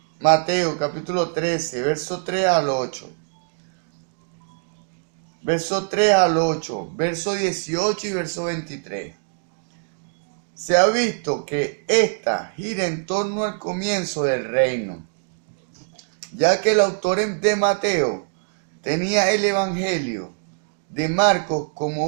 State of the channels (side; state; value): left; silent; digital silence